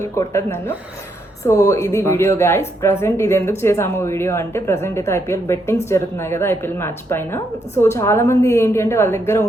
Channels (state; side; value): normal; both; correlation 0.77